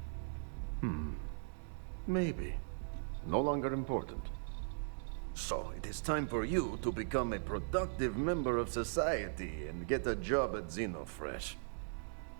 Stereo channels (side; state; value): left; silent; digital silence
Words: Maybe. No longer important. So, it is time for you to become a productive member of society and get a job at Xenofresh.